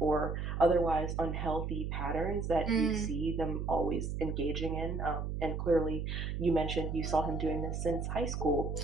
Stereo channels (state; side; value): noise; right; hum, 3 dB below the sound